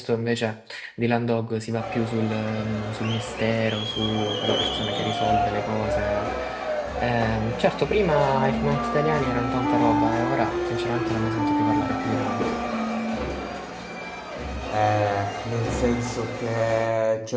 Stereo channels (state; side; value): identical; both; correlation 1.00